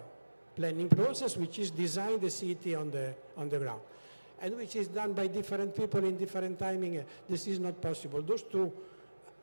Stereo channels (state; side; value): inverted; both; correlation -1.00